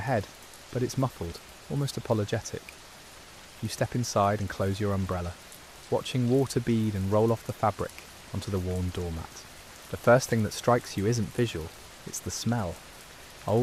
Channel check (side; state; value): both; identical; correlation 1.00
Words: but it's muffled, almost apologetic. You step inside and close your umbrella, watching water bead and roll off the fabric onto the worn doormat. The first thing that strikes you isn't visual, it's the smell.